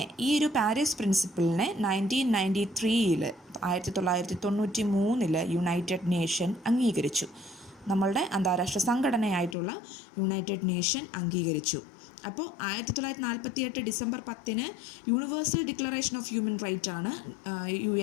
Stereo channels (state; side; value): drops out; right; at 9.6 s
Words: ഈ ഒരു പാരീസ് പ്രിൻസിപ്പിളിനെ 1993 1993 യുണൈറ്റഡ് നേഷൻ അംഗീകരിച്ചു. നമ്മളുടെ അന്താരാഷ്ട്ര സംഘടനയായിട്ടുള്ള യുണൈറ്റഡ് നേഷൻ അംഗീകരിച്ചു. അപ്പോൾ 1948 December 10 universal declaration of human right ആണ്